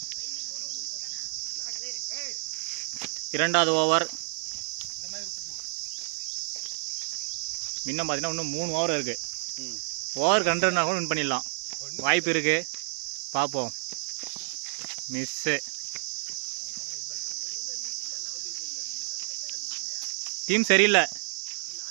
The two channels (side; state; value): left; silent; digital silence